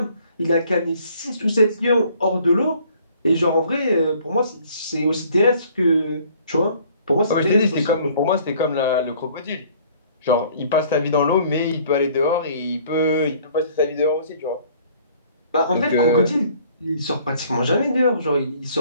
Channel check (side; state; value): both; inverted; correlation -0.57